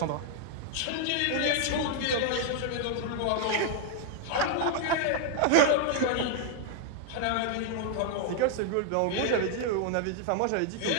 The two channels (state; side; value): different; both; correlation 0.00